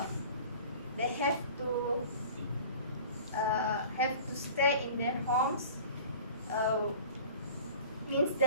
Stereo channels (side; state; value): both; inverted; correlation -0.44